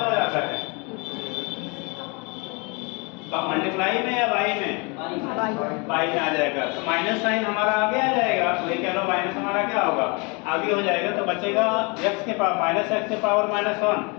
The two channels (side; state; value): right; quieter; 30.4 dB